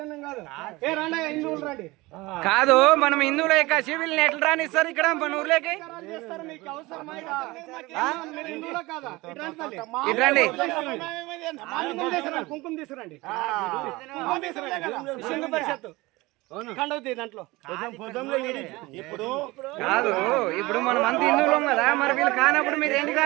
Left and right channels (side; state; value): left; quieter; 21.4 dB